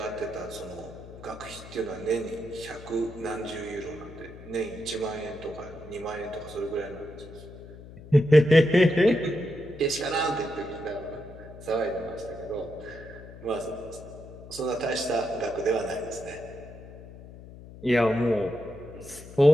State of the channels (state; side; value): noise; left; hum, 16 dB below the sound